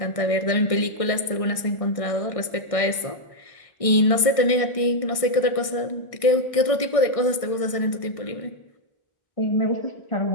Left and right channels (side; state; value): right; late; 1.6 ms